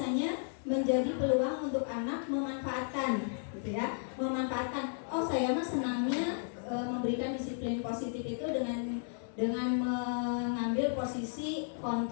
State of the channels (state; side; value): silent; right; digital silence